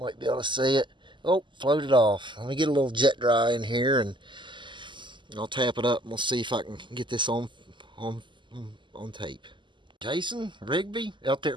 be able to see it. Oh, floated off. Let me get a little jet dry in here and I'll tap it up and we'll see if I can get this on tape. Jason Rigby out there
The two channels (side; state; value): left; late; 0.23 ms